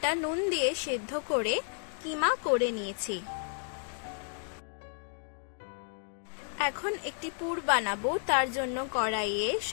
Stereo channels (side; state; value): right; silent; 56 dB below the other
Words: নুন দিয়ে সেদ্ধ করে কিমা করে নিয়েছি। এখন একটি পুর বানাবো, তার জন্য কড়াইয়ে